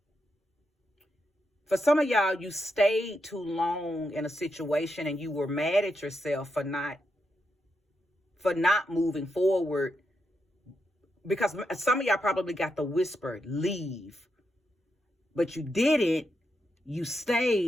for some of y'all, you stayed too long in a situation and you were mad at yourself for not moving forward, because some of y'all probably got the whisper, leave, but you didn't. You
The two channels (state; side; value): normal; both; correlation 0.84